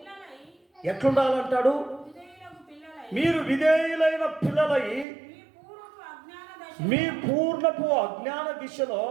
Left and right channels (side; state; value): left; drops out; at 5.1 s